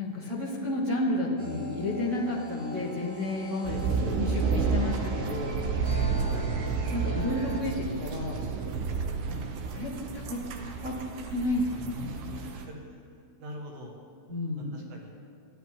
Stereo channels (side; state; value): left; late; 16 ms